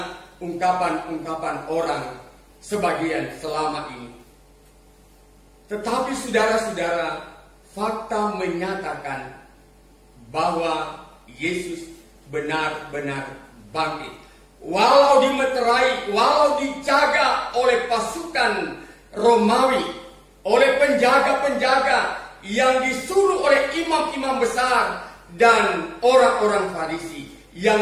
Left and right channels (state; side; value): identical; both; correlation 1.00